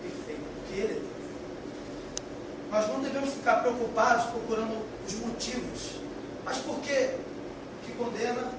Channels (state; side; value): identical; both; correlation 1.00